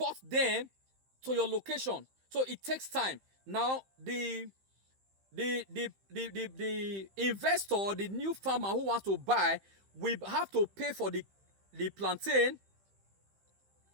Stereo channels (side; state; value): left; late; 15 ms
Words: them to your location. So it takes time. Now the investor, the new farmer who wants to buy, will have to pay for the plantain,